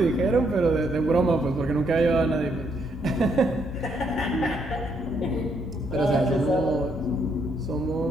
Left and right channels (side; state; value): both; normal; correlation 0.74